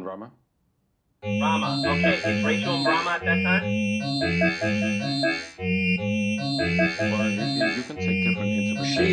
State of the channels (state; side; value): identical; both; correlation 1.00